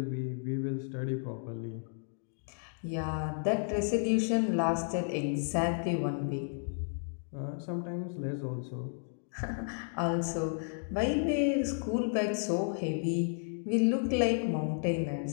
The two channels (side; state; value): right; silent; digital silence